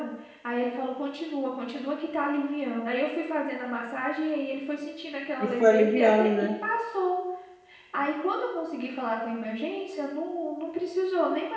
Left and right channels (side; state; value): both; identical; correlation 1.00